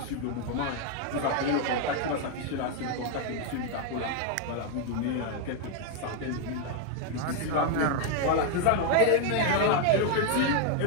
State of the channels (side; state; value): both; different; correlation 0.00